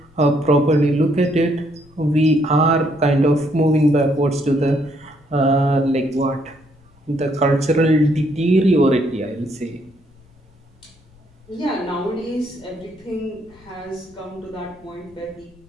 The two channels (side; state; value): left; noise; rumble, 29 dB below the sound